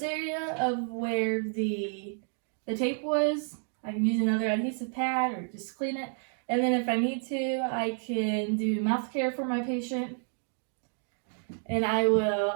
area of where the tape was. I can use another adhesive pad or just clean it. And then if I need to, I can do mouth care for my patient. And I will,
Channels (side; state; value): left; silent; 58 dB below the other